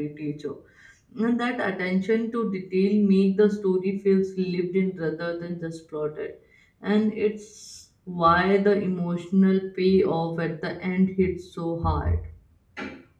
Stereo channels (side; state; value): both; identical; correlation 1.00